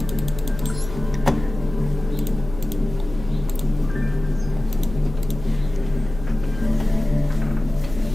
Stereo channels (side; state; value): left; noise; hum, 11 dB below the sound